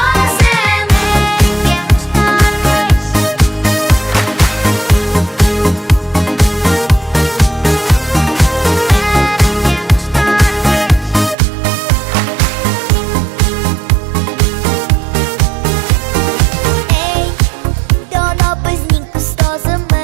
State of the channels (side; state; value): left; drops out; at 11.4 s